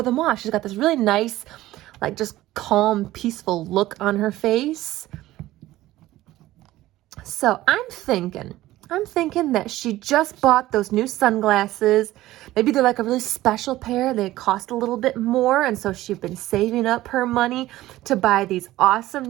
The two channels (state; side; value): quieter; left; 16.0 dB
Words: them off? She's got this really nice, like just calm, peaceful look on her face. So I'm thinking that she just bought those new sunglasses. Maybe they're like a really special pair. They cost a little bit more, and so she's been saving up her money to buy these awesome